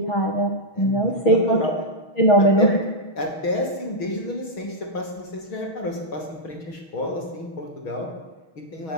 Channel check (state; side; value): late; right; 6.3 ms